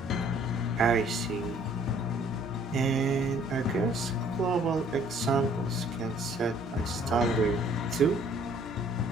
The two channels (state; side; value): normal; both; correlation 0.59